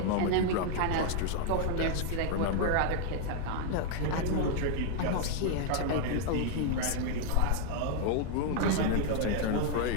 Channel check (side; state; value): both; different; correlation 0.00